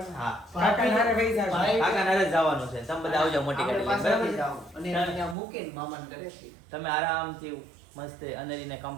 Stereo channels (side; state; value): left; drops out; at 5.4 s